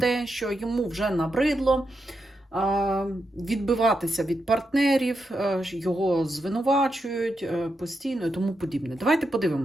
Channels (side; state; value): both; normal; correlation 0.85